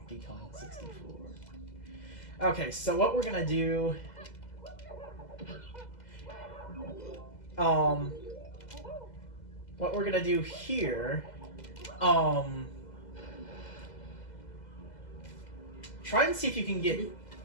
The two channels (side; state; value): right; late; 2.0 ms